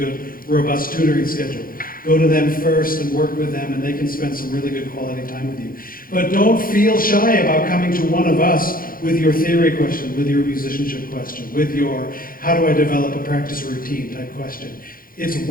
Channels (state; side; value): late; right; 0.41 ms